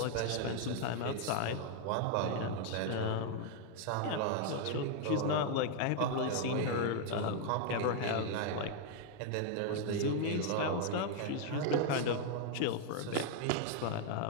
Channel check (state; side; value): different; both; correlation 0.00